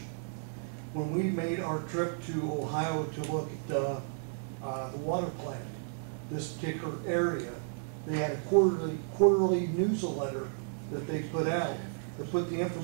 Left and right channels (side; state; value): left; silent; digital silence